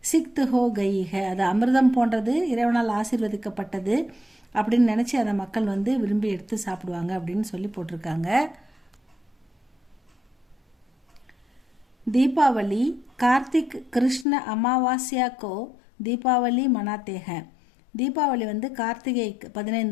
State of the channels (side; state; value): right; drops out; at 14.2 s